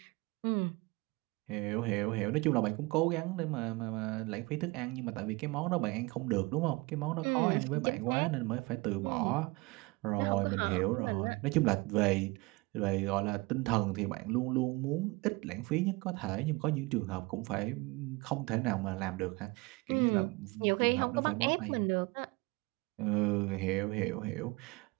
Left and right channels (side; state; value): left; quieter; 24.3 dB